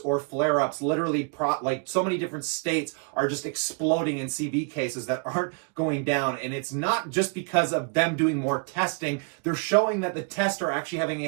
flare-ups. Literally, like so many different states are just exploding in CV cases that aren't going down. And it's not just because of them doing more testing. They're showing that the tests are actually having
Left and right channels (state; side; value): quieter; left; 36.5 dB